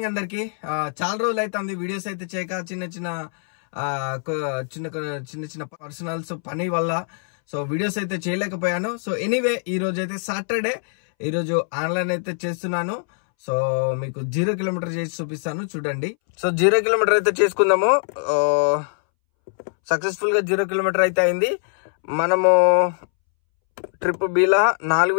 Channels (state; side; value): silent; right; 64 dB below the other